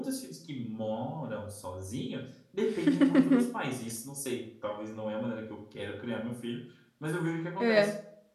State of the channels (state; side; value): identical; both; correlation 1.00